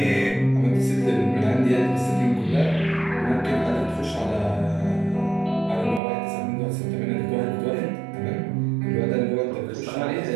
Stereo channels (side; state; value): left; drops out; at 6.0 s